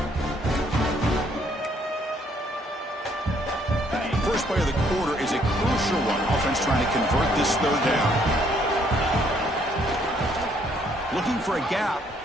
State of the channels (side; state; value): both; normal; correlation 0.67